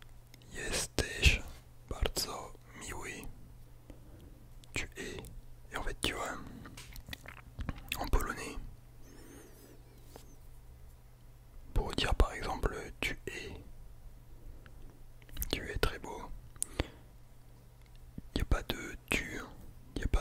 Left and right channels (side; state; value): both; identical; correlation 1.00